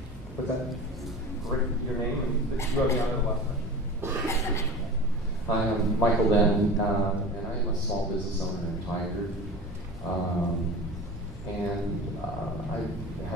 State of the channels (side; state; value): both; normal; correlation 0.34